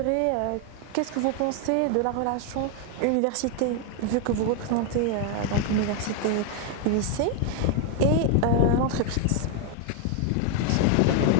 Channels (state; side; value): different; both; correlation 0.01